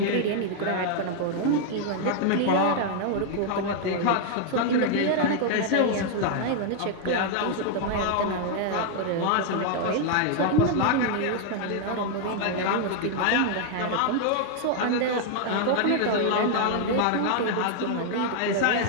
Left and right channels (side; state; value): both; different; correlation 0.00